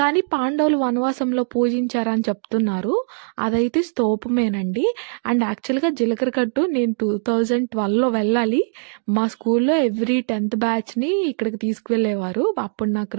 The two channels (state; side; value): silent; left; 64 dB below the other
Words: పాండవులు వనవాసంలో పూజించారని చెప్తున్నారు. అదైతే స్తూపమేనండి. అండ్ యాక్చువల్‌గా జీలకర్ర గట్టు నేను 2012లో వెళ్ళాలి. మా స్కూల్లో ఎవ్రీ 10th బ్యాచ్‌ని ఇక్కడికి తీసుకువెళ్ళేవారు. అప్పుడు నాకు